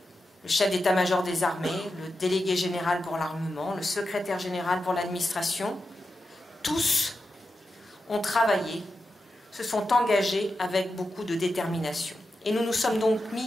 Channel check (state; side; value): normal; both; correlation 0.89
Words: le chef d'état-major des armées, le délégué général pour l'armement, le secrétaire général pour l'administration, tous ont travaillé, se sont engagés avec beaucoup de détermination. Et nous nous sommes donc